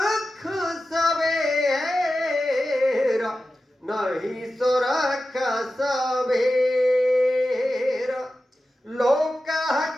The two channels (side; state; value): both; normal; correlation 0.93